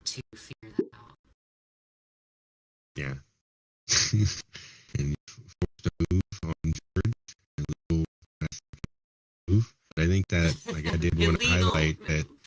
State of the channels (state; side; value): identical; both; correlation 1.00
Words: to figure that out. Yeah. And you forced a move on George, a little move. But I think that, like, I did want to Illegal highlight that